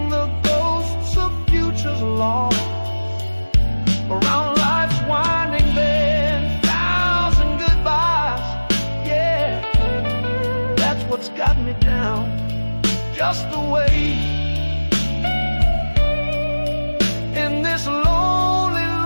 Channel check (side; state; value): both; inverted; correlation -1.00